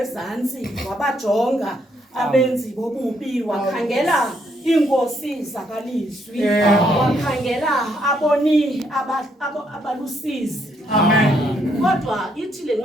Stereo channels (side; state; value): both; normal; correlation 0.73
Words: wabajonga abenzi bobubi wakhangela inkosi zakalizwi wakhangela aboni abalusizi. Amen. Kodwa ithi le